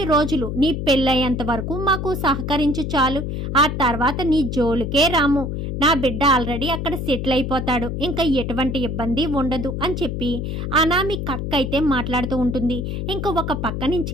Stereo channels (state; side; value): noise; left; hum, 3 dB below the sound